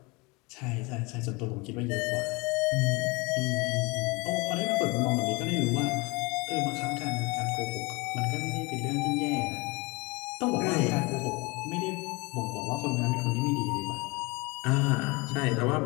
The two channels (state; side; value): quieter; right; 26.0 dB